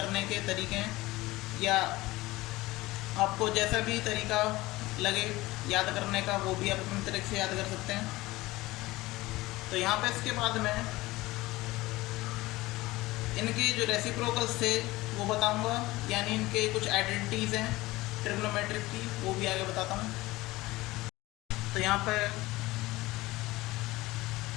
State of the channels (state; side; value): quieter; right; 19.4 dB